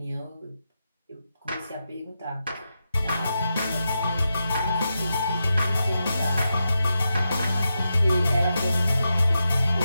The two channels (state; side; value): inverted; both; correlation -0.88